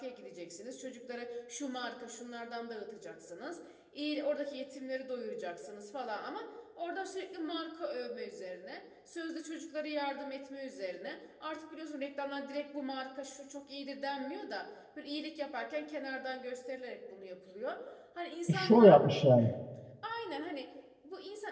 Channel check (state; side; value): identical; both; correlation 1.00